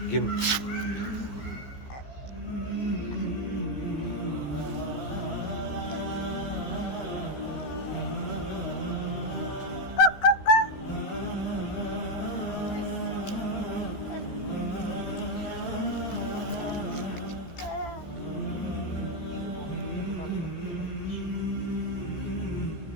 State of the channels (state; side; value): late; right; 14 ms